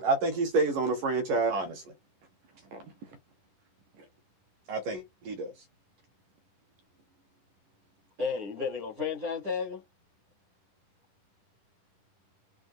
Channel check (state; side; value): late; left; 11 ms